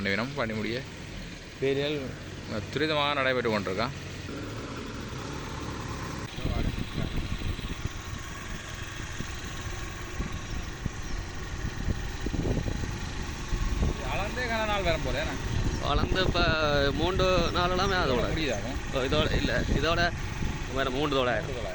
வேணும். பண்ணி முடிய வேலைகள் துரிதமாக நடைபெற்று கொண்டிருக்கான். வளர்ந்தே கன நாள் வரும் போல வளர்ந்து இப்போ 3 நாளெல்லாமே அதோட முடியுதாகும். இதோட இல்லை, இதோட வேறு 3,000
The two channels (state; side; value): identical; both; correlation 1.00